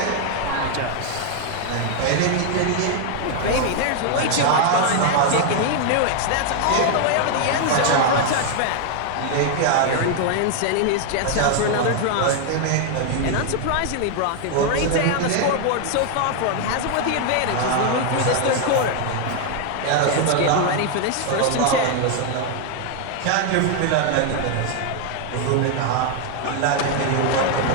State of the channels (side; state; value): both; different; correlation 0.00